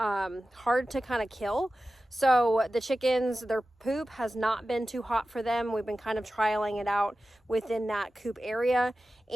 to kind of kill. So the chickens, their poop has not been too hot for them. We've been kind of trialing it out within that coop area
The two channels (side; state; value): both; normal; correlation 0.94